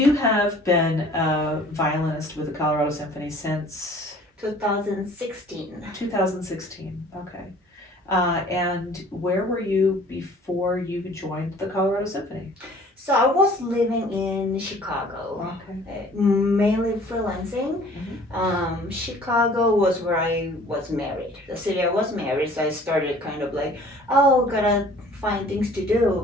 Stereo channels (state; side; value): normal; both; correlation 0.51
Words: have been a violinist with the Colorado Symphony since 2016. 2016. Okay. And where were you before you joined the Colorado Symphony? So I was living in Chicago, Okay. mainly freelancing. Mhm. Chicago was where I was married. The city I was married, so I started kind of like, oh, gotta find things to do,